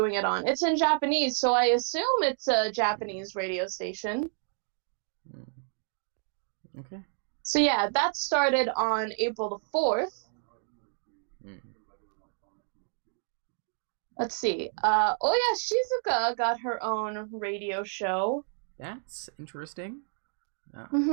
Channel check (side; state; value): left; silent; 58 dB below the other